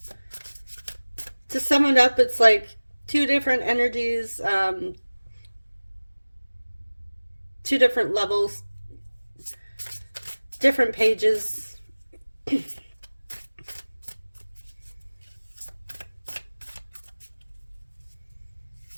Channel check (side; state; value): both; inverted; correlation -1.00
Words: To sum it up, it's like two different energies, two different levels, different pages.